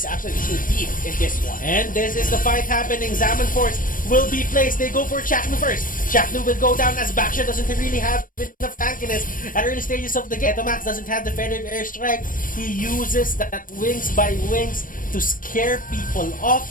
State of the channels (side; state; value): right; late; 0.40 ms